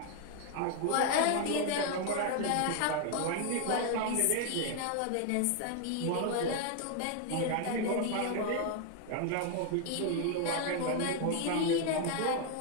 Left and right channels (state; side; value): different; both; correlation 0.00